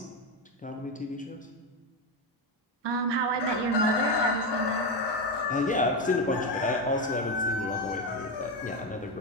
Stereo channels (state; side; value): normal; both; correlation 0.11